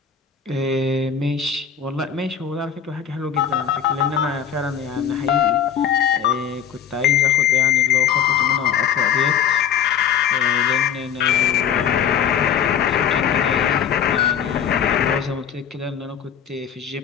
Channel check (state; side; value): quieter; right; 8.3 dB